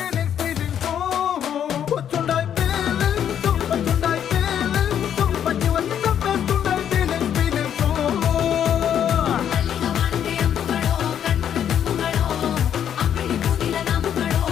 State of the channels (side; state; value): right; quieter; 9.3 dB